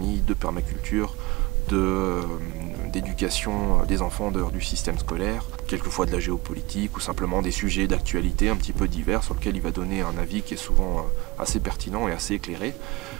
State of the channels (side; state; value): left; quieter; 22.7 dB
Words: de permaculture, d'éducation des enfants en dehors du système scolaire, quelquefois de la géopolitique ou simplement des sujets d'actualité un petit peu divers sur lesquels il va donner un avis qui est souvent assez pertinent et assez éclairé